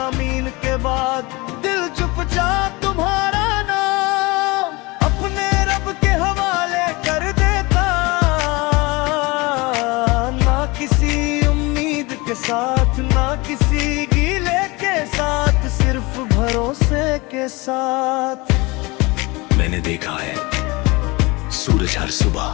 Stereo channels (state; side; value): quieter; right; 24.5 dB